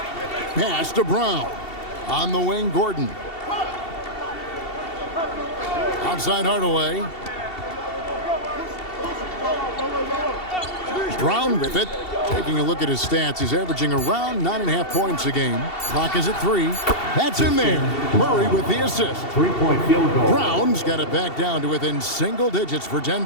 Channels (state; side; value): late; right; 2.7 ms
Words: Pass to Brown. On the wing, Gordon. Outside Hardaway. Brown with it. Taking a look at his stats, he's averaging around 9.5 points a game. Clock is at 3. That's in there. Murray with the assist. 3-point field goal. Brown's got it back down to within single digits for